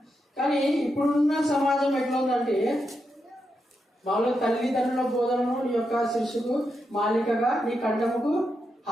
కానీ ఇప్పుడున్న సమాజం ఎట్లా ఉందంటే, మామూలుగా తల్లిదండ్రుల బోధనను నీ యొక్క శిరస్సుకు మాలికగా నీ కంఠముకు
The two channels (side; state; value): both; normal; correlation 0.85